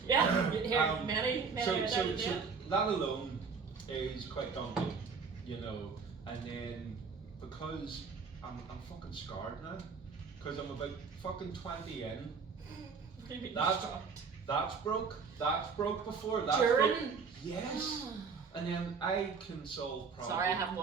Yeah, here, many So that alone is quite daunting, you know. And then because I'm fucking scarred now, because I'm about fucking 20 in. That's broke. That's broke before. That's During? Broke. Yes. And then I can solve problems. Sorry, I haven't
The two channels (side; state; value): left; quieter; 5.5 dB